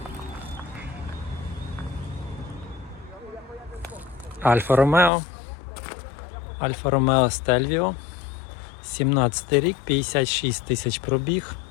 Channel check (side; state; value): right; drops out; at 5.1 s